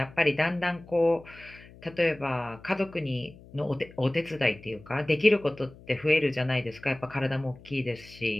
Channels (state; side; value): noise; left; hum, 21 dB below the sound